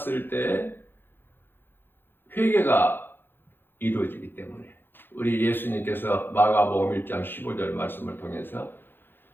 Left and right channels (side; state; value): right; late; 0.10 ms